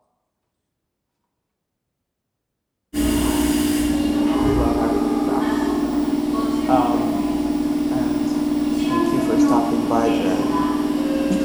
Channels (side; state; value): both; identical; correlation 1.00